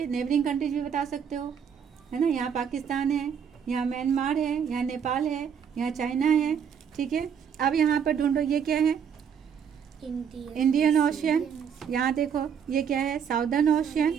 नेबरिंग कंट्रीज भी बता सकते हो, है ना। यहाँ पाकिस्तान है, यहाँ म्यांमार है, यहाँ नेपाल है, यहाँ चाइना है। ठीक है, अब यहाँ पर ढूंढो, ये क्या है? Indian ocean. यहाँ देखो, ये क्या है? Southern ocean.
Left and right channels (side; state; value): left; quieter; 7.6 dB